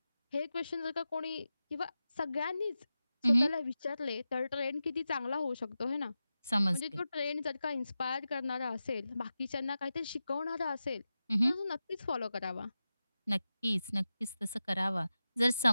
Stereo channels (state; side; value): inverted; both; correlation -0.93